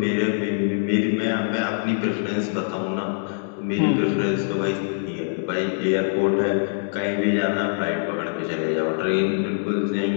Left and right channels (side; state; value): right; silent; digital silence